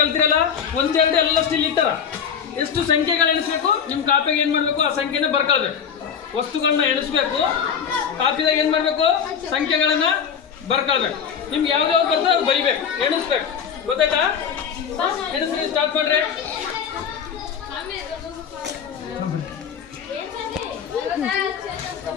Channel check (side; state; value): right; quieter; 7.3 dB